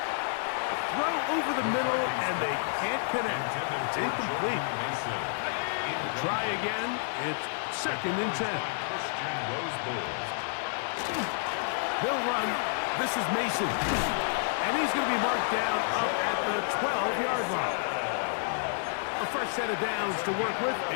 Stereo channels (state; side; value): silent; right; 58 dB below the other